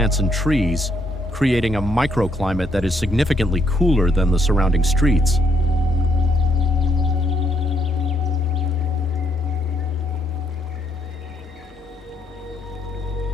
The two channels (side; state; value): left; noise; hum, 27 dB below the sound